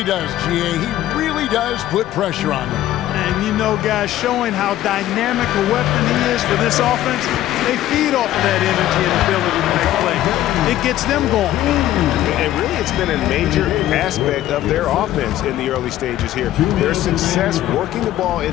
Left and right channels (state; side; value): quieter; right; 13.6 dB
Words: does, GA. He really does put pressure on them. And you know, guys, showing how dynamic a weapon he is for this offense, they feed off of that energy and ability to make plays. It gets them going. And really, it's been a major aspect of their offense in the early stages here. Their success working the ball